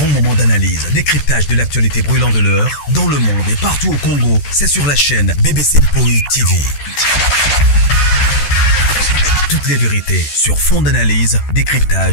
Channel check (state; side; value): late; right; 14 ms